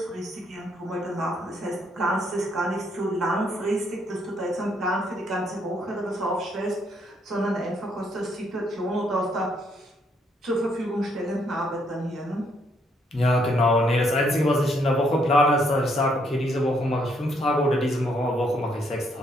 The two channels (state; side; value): normal; both; correlation 0.71